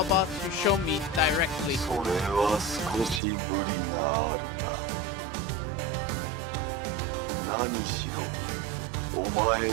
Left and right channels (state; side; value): drops out; left; at 3.2 s